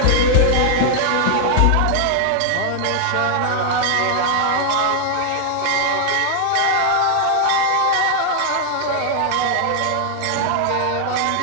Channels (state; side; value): different; both; correlation 0.00